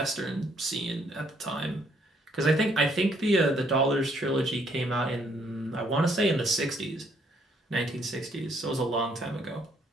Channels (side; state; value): both; normal; correlation 0.68